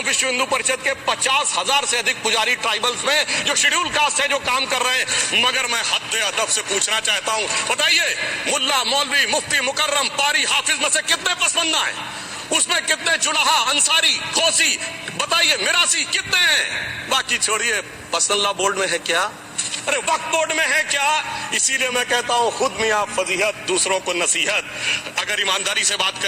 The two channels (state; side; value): identical; both; correlation 1.00